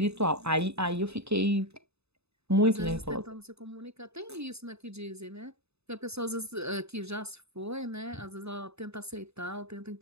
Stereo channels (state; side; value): late; left; 0.79 ms